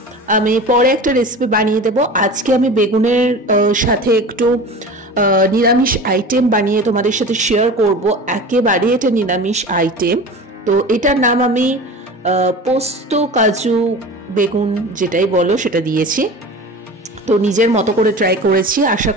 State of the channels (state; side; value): normal; both; correlation 0.35